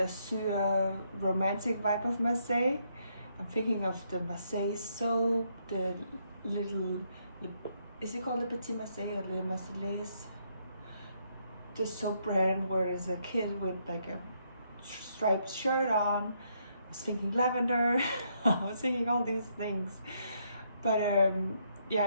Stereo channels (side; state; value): both; inverted; correlation -0.74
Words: romantic vibe of Marseille. I'm thinking of the Marseille soap, is it called Le Petit Marseille or Le Marseillaise? The soap brand where there's a kid with like a striped shirt on. I was thinking lavender. I was thinking all these things. But